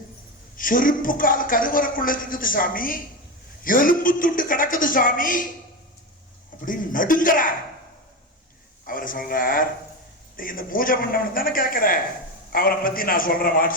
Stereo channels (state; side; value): normal; both; correlation 0.18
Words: செருப்பு கால் கருவறைக்குள்ள இருக்குது சாமி, எலும்பு துண்டு கிடக்குது சாமி அப்படின்னு நடுங்கிறார். அவர் சொல்றார், இந்த பூஜை பண்ணவன் தானே கேட்கிற, அவரை பத்தி நான் சொல்றேன்,